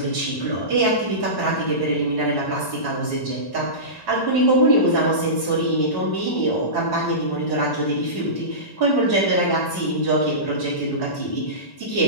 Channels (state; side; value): late; right; 1.1 ms